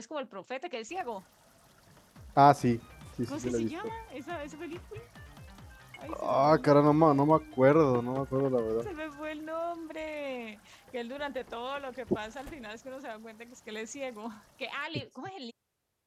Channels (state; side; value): identical; both; correlation 1.00